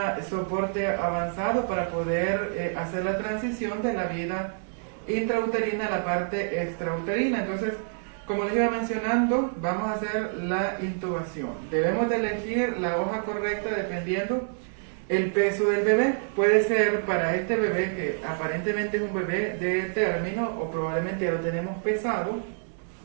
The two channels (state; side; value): silent; left; digital silence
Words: soporte avanzado para poder hacer la transición de la vida intrauterina a la parte extrauterina. Entonces, como les iba mencionando, vamos a hacer la intubación. Debemos de elegir la hoja correcta dependiendo el peso del bebé. Puede ser para este bebé que aparentemente es un bebé de término o probablemente ya lo tenemos pesado